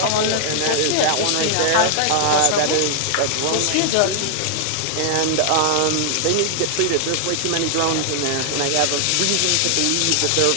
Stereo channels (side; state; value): both; different; correlation -0.01